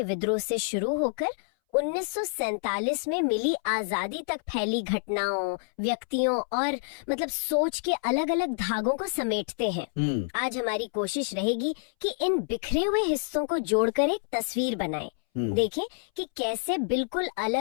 विद्रोह से शुरू होकर 1947 में मिली आजादी तक फैली घटनाओं, व्यक्तियों और मतलब सोच के अलग अलग धागों को समेटते हैं। आज हमारी कोशिश रहेगी कि इन बिखरे हुए हिस्सों को जोड़कर एक तस्वीर बनाएं। देखें कि कैसे बिल्कुल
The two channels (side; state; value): right; silent; 59 dB below the other